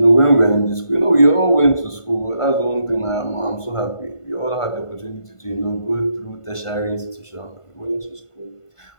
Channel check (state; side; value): late; right; 1.5 ms